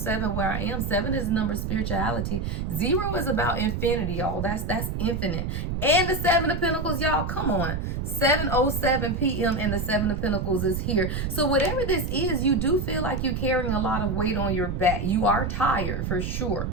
where I am. 7 is the number of spirituality. 0 is about infinity, y'all. That's infinite. And the 7 of Pentacles, y'all, come on. 7:07 p.m. and the 7 of Pentacles is here. So whatever this is, you do feel like you're carrying a lot of weight on your back. You are tired for sure.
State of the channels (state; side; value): noise; right; rumble, 3 dB below the sound